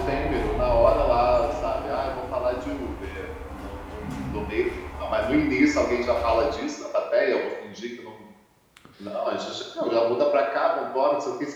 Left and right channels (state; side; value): identical; both; correlation 1.00